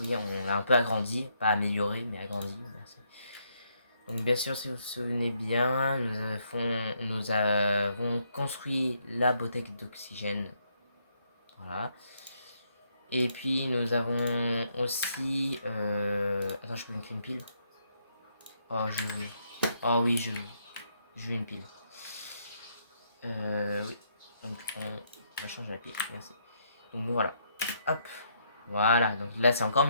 on l'a un peu agrandi. Pas amélioré, mais agrandi. Merci. Donc bien sûr, si vous vous souvenez bien, nous avons construit la bouteille d'oxygène. Voilà. Et puis nous avons aussi... Attends, je peux me créer une pile. Oh, je veux. Oh oui, je veux. Je veux une pile. Oui. Donc on va changer la pile. Merci. Donc voilà. Hop. Voilà, donc là c'est encore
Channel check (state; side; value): inverted; both; correlation -0.74